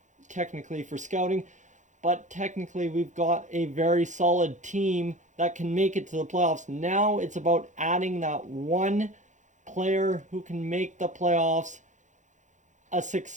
technically for scouting. But technically we've got a very solid team that can make it to the playoffs. Now it's about adding that one player who can make the playoffs a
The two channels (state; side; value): late; left; 0.35 ms